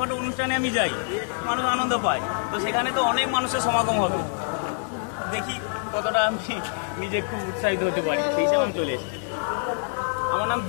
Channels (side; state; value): right; silent; digital silence